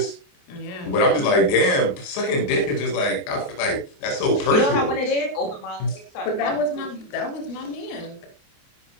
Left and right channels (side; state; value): right; late; 28 ms